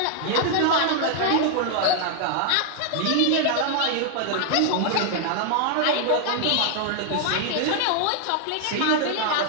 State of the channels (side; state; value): both; different; correlation 0.00